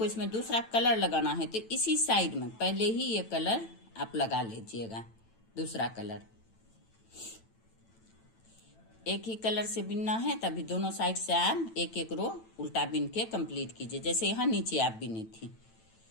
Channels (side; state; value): right; late; 9.0 ms